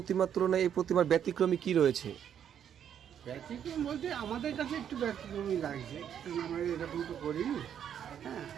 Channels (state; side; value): quieter; left; 9.1 dB